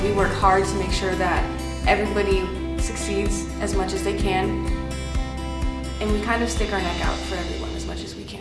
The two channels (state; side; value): identical; both; correlation 1.00